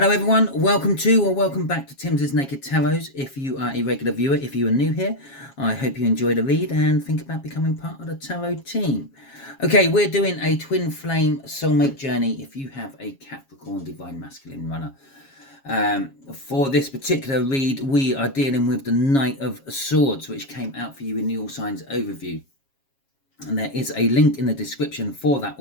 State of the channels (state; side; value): late; right; 7.3 ms